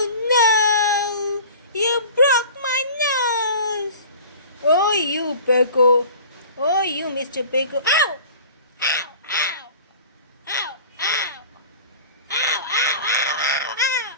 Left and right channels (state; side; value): inverted; both; correlation -0.41